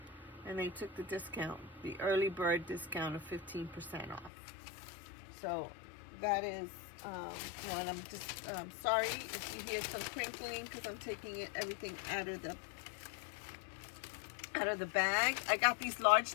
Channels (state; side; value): drops out; right; at 4.3 s